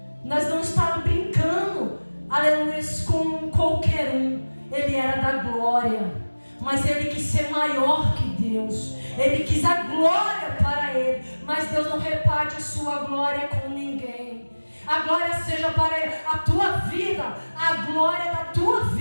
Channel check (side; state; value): both; inverted; correlation -1.00